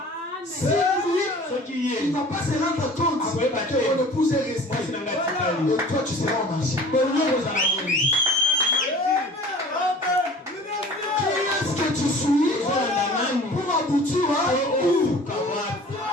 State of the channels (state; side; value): normal; both; correlation 0.45